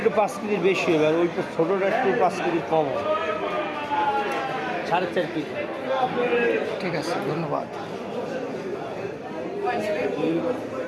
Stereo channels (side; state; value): both; identical; correlation 1.00